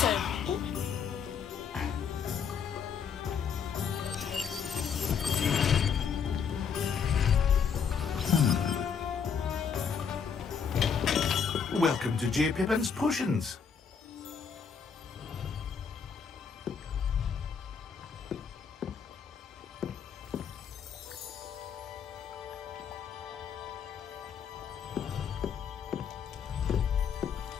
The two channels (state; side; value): quieter; right; 6.7 dB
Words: Welcome to J. Pippin's Potions.